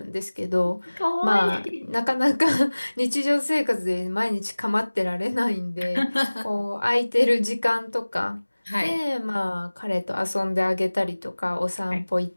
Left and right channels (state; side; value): inverted; both; correlation -1.00